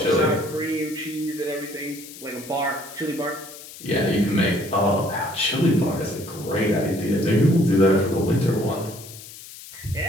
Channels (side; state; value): left; noise; hiss, 16 dB below the sound